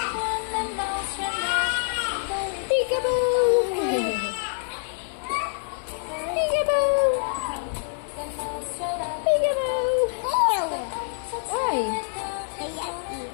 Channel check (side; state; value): right; silent; 61 dB below the other